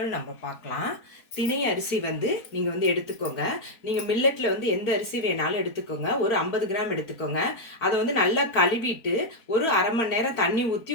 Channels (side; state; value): right; late; 4.6 ms